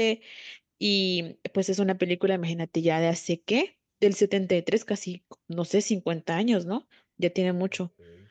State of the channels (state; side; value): identical; both; correlation 1.00